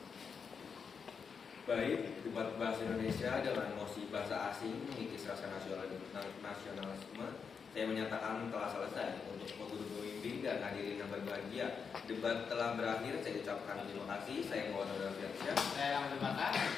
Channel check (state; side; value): quieter; right; 6.0 dB